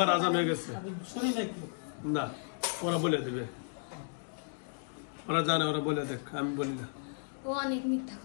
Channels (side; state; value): right; silent; digital silence